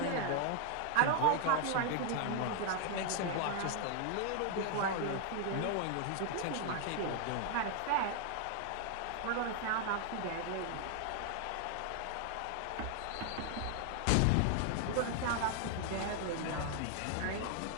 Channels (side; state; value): both; different; correlation 0.00